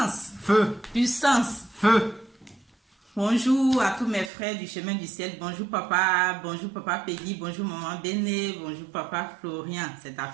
Feu. Puissance. Feu. Bonjour à tous mes frères du chemin du ciel. Bonjour papa Peggy. Bonjour maman Béné. Bonjour papa Florian. C'est ta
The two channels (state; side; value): drops out; left; at 4.3 s